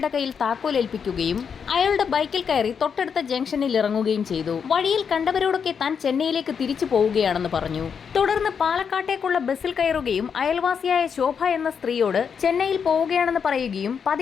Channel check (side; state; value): right; quieter; 6.7 dB